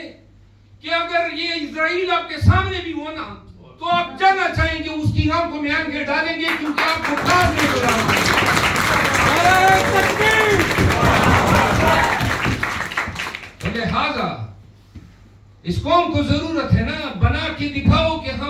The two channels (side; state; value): both; identical; correlation 1.00